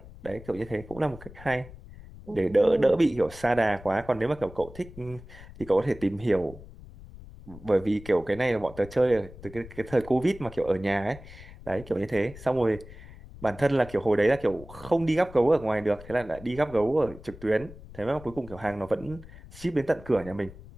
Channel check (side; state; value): left; noise; rumble, 17 dB below the sound